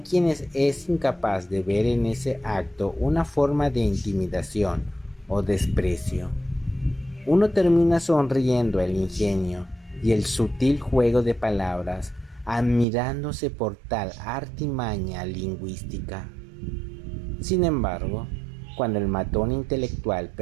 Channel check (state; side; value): drops out; left; at 12.9 s